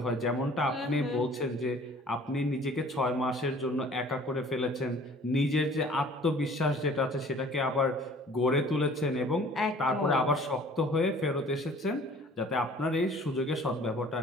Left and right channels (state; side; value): normal; both; correlation 0.51